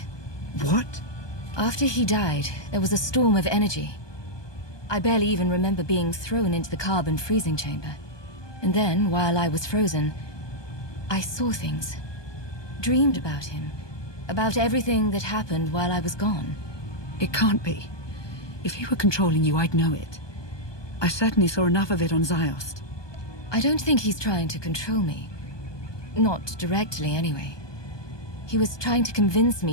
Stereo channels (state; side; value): late; right; 1.2 ms